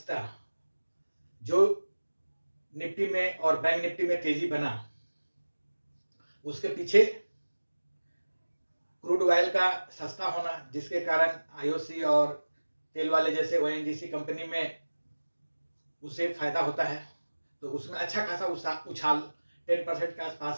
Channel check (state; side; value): inverted; both; correlation -1.00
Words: जो निफ्टी में और बैंक निफ्टी में तेजी बना, उसके पीछे क्रूड ऑयल का सस्ता होना, जिसके कारण आईओसी और तेल वाले जैसे ओएनजीसी कंपनी में उसे फायदा होता है, तो उसमें अच्छा खासा उछाल 10% के